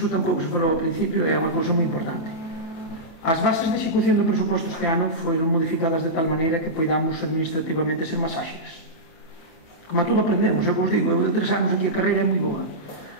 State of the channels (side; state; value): right; late; 28 ms